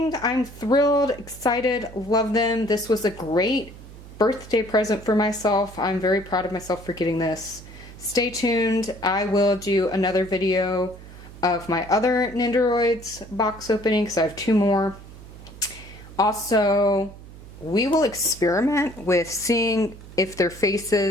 I'm thrilled, excited, love them. This was a great birthday present for myself. I'm very proud of myself for getting this. Stay tuned. I will do another video of my other Nendoroids box opening because I have 2 more. Also, we will experiment with seeing if their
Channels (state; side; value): noise; right; hum, 17 dB below the sound